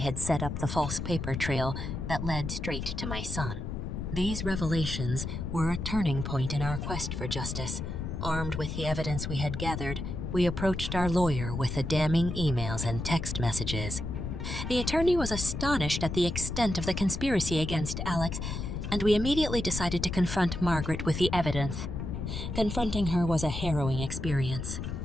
set up the false paper trail that led straight to my son. These revelations were a turning point in our quest for justice. Armed with the evidence we had gathered, we approached our lawyer with the damning emails and text messages. The attorney was astonished at the extent of the conspiracy against Alex, and we immediately decided to confront Margaret with the evidence. Confronting her was a harrowing experience.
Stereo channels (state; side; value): noise; left; rumble, 5 dB below the sound